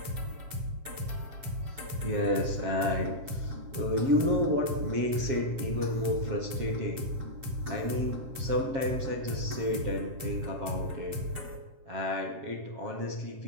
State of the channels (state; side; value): late; left; 7.5 ms